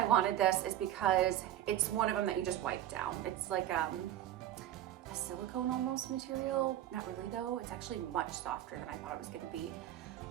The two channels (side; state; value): left; quieter; 12.6 dB